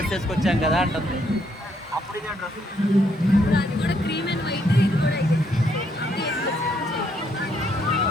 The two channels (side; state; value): both; normal; correlation 0.72